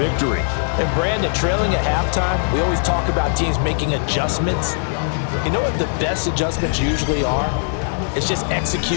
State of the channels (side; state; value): right; silent; digital silence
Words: And Brandon, trailing at halftime, we always talk about teams making adjustments. You know what the best adjustments usually are? It's just